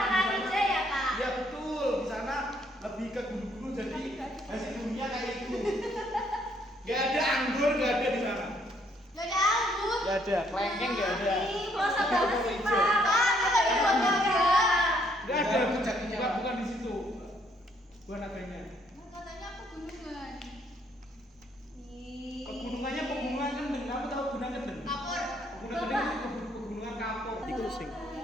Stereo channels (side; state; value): both; normal; correlation 0.68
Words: Ya betul, di sana lebih ke gunung-gunung jadi hasil buminya kayak itu. Gak ada anggur, gak ada di sana. Gak ada, kelengkeng gak ada. Gak ada, bukan di situ. Bukan adanya. Pegunungannya pegunungan kendeng. Kamu tahu gunung kendeng? Pegunungan kendeng itu pegunungan kapur. Itu sing.